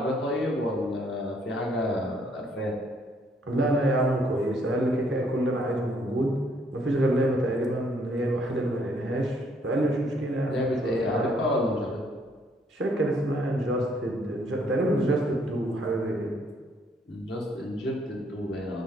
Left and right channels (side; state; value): both; normal; correlation 0.67